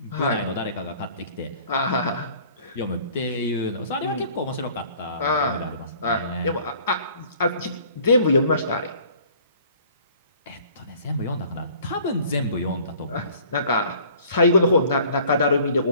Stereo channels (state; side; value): inverted; both; correlation -0.53